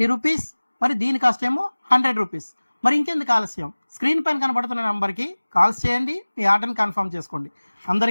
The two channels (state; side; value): inverted; both; correlation -1.00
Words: రూపీస్. మరి దీని కాస్ట్ ఏమో 100 రూపీస్. మరి ఇంకెందుకు ఆలస్యం, స్క్రీన్ పైన కనబడుతున్న నెంబర్కి కాల్స్ చేయండి, మీ ఆర్డర్ని కన్ఫర్మ్ చేసుకోండి.